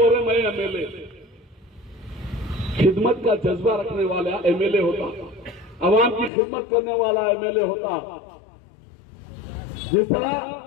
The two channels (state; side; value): drops out; right; at 6.3 s